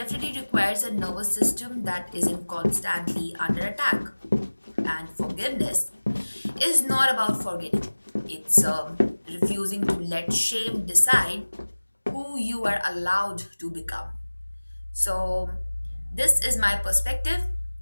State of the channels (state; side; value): inverted; both; correlation -1.00